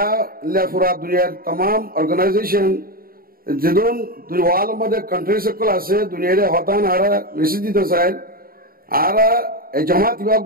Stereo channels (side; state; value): left; late; 0.43 ms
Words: लेफुरा दुनिया तमाम ऑर्गेनाइजेशन जिदून वाल मदे कंट्री से कल आसे दुनिया रे होतान आरा रिसिदी तो साइड आरा जमात